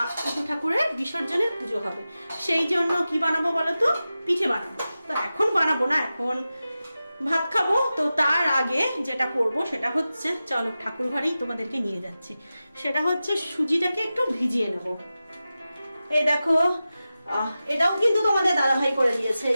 ইতু ঠাকুরের বিসর্জনের পুজো হবে, সেই জন্য কি বানাবো বলো তো, পিঠে বানাবো। তো এখন বানাবো না, এখন ভাত খাবো। তো তার আগে যেটা করব সেটা হচ্ছে, চলো ঠাকুর ঘরেই তোমাদেরকে নিয়ে যাচ্ছি, সেটা হচ্ছে সুজিটাকে একটু ভিজিয়ে নেবো। এই দেখো, এটাও কিন্তু তোমাদের দাদাভাই করে দিয়েছে।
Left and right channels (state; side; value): inverted; both; correlation -0.94